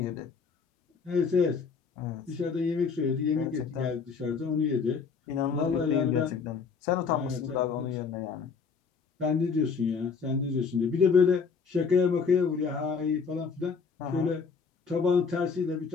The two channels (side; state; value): right; quieter; 5.6 dB